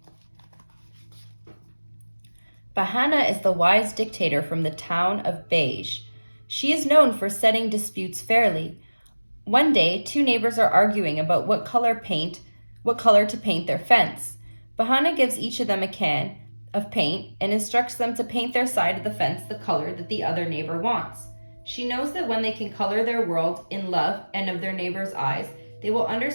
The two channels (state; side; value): inverted; both; correlation -1.00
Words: Bahana is the wise dictator from the town of Beige. She is known for settling disputes fairly. One day, two neighbors are arguing about what color to paint their fence. Bahana gives each of them a can of paint and instructs them to paint their side of the fence the color that the other neighbor wants. She knows that when they can color their world in love and of their neighbor's eyes, they will